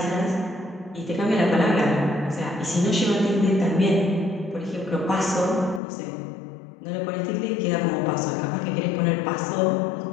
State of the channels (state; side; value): drops out; right; at 5.8 s